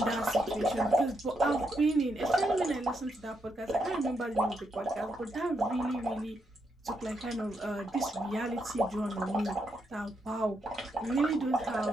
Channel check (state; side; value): normal; both; correlation 0.80